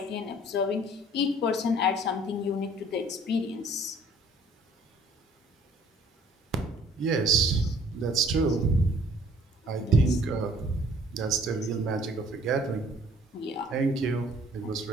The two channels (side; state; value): both; normal; correlation 0.56